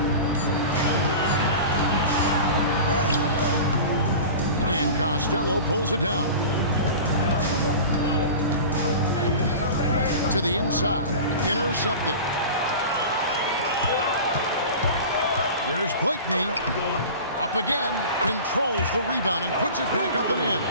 And Costello pulls it down. To the inside. Intercepted. Here's Blakeney. Up again. Controls the rebound and puts it back up and in.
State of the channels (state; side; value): inverted; both; correlation -0.35